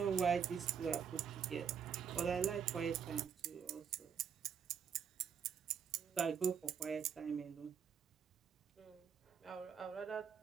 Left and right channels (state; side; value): quieter; left; 7.4 dB